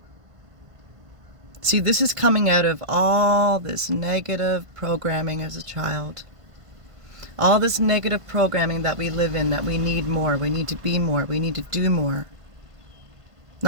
See, this is coming out of all this negative programming as a child. All this negative programming that we live in, that we need more, we need to be more, we need to do more.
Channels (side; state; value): left; late; 1.5 ms